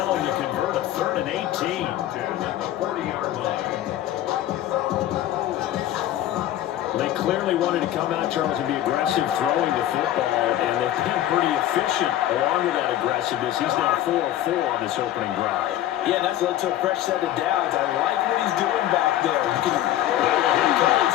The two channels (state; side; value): quieter; right; 13.0 dB